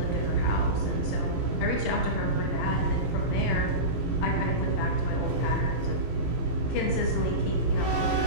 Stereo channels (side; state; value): right; late; 17 ms